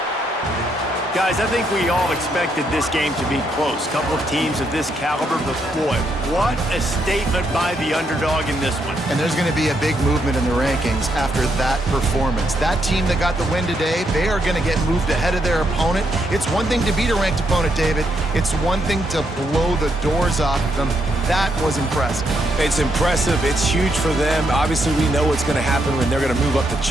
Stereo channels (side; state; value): both; normal; correlation 0.77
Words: Guys, I think we all expected this game to be close. Couple of teams of this caliber, but boy, what a statement by the underdog in this one. And there's going to be a big movement in the rankings after that performance. That team that got the win today, they are going to get moved ahead of their opponent. It's one thing to beat a ranked opponent, David. It's one thing to blow the doors off of them. That was impressive. It's impressive. It's huge for them. Obviously, we know what's going to happen when they're going to move up the